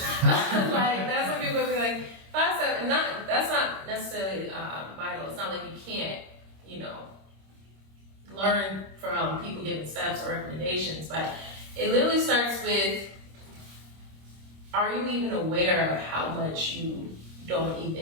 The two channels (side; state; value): left; late; 26 ms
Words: that's when people be like, 5 steps, and that's not necessarily vital. It's not like you can't, learn from people giving steps or recommendations, but it literally starts with, are you even aware of how much you don't